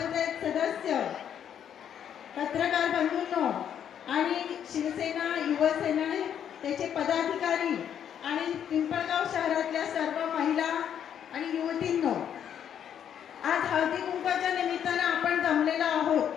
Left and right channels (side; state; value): right; quieter; 9.1 dB